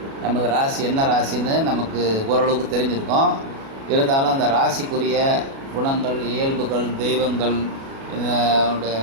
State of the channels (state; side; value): late; left; 37 ms